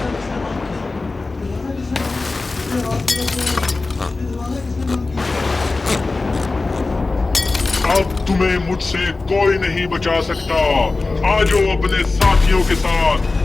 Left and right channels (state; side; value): quieter; right; 3.5 dB